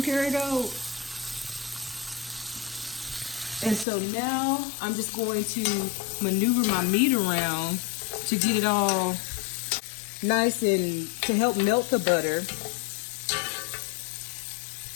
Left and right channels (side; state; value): right; drops out; at 3.9 s